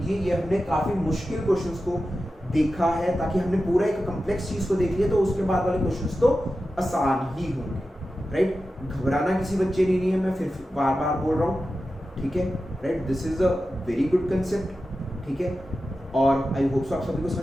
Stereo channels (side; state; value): both; normal; correlation 0.92